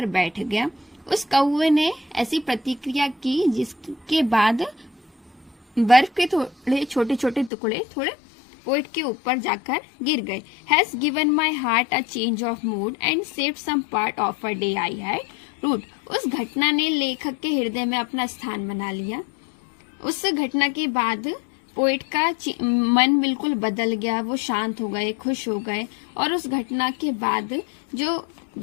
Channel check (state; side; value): drops out; right; at 7.5 s